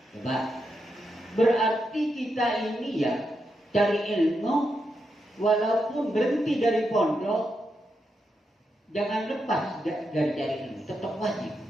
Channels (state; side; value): normal; both; correlation 0.84